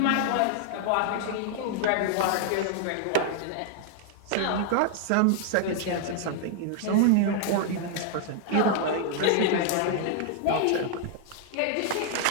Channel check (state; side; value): different; both; correlation 0.00